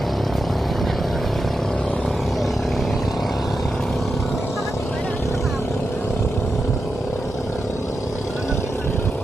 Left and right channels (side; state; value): both; normal; correlation 0.88